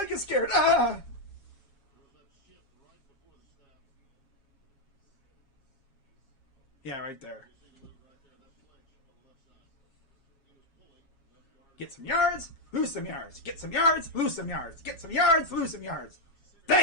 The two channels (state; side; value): late; right; 7.3 ms